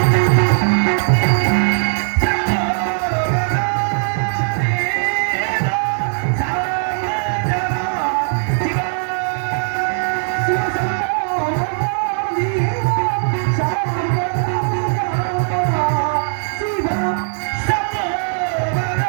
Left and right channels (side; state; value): left; silent; 67 dB below the other